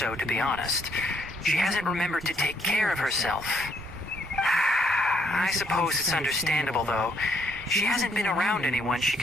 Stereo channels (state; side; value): normal; both; correlation 0.70